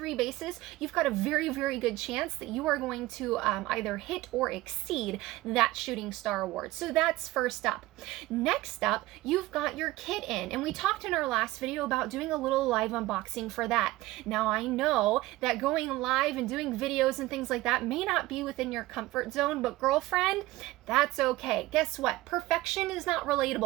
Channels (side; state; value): left; quieter; 18.2 dB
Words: bases, you've got a very, very good chance that you are going to either hit or exceed that Shooting Star Award. So that's first up. Next up, you've got your kit in. And we talked in our last video about doing a little live unboxing for that. Now I know that going live and doing videos and things like that may not be within your comfort zone, but girlfriend, that's okay. Guess what? Perfection is not